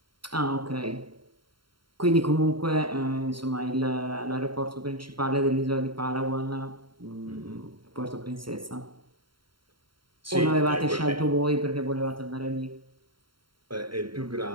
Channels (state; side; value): late; left; 0.73 ms